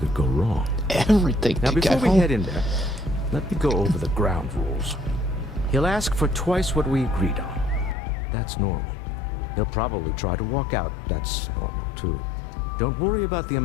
go wrong. Everything Now, could before go we wrong. head in there, let me go over the ground rules. He'll ask for twice what we agreed on. That's normal. He'll probably try to walk out. That's normal, too. Don't worry about the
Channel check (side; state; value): right; drops out; at 8.0 s